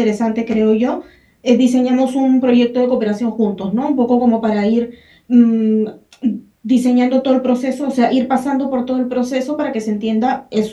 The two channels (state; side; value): identical; both; correlation 1.00